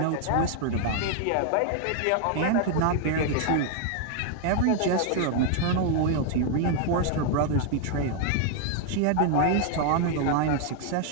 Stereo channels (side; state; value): both; different; correlation 0.00